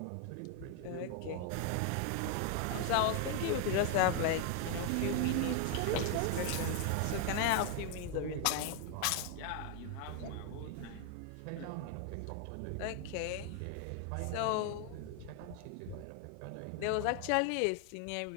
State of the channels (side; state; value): both; different; correlation 0.00